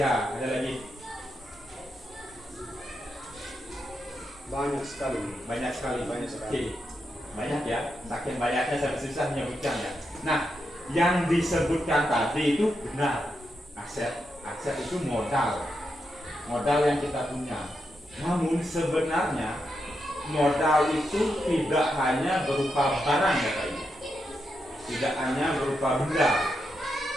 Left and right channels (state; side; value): normal; both; correlation 0.85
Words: Ada lagi? Banyak sekali. Oke. Banyak ya. Saking banyaknya saya susah menyebutkan ya. Nah, yang disebutkan tadi itu benar. Aset itu modal yang kita punya. Namun sebenarnya modal itu tidak hanya berupa barang ya Pak Ibu. tidak hanya berupa benda,